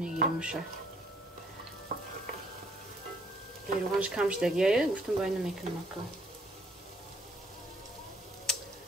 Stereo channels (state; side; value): normal; both; correlation 0.65